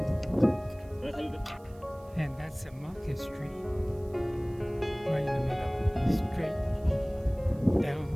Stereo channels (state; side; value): noise; right; hiss, 29 dB below the sound